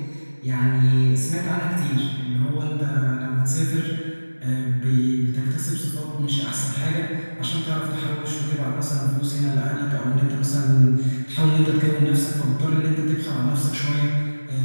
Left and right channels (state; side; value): inverted; both; correlation -1.00